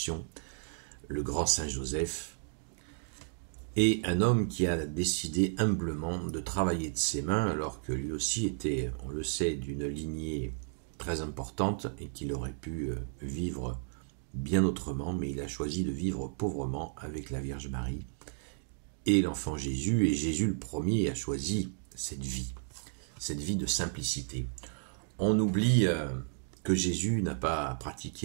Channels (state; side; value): silent; left; digital silence